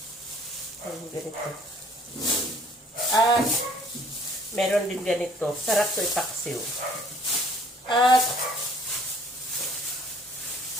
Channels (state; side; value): normal; both; correlation 0.57